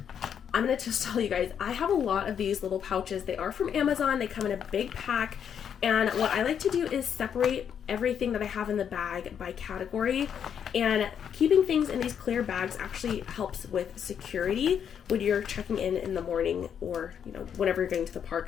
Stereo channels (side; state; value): right; quieter; 8.2 dB